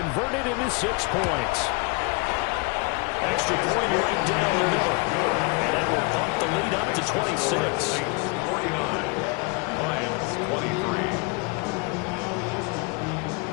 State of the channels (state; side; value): quieter; right; 29.9 dB